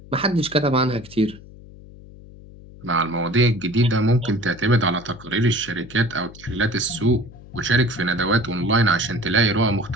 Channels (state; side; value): noise; left; hum, 19 dB below the sound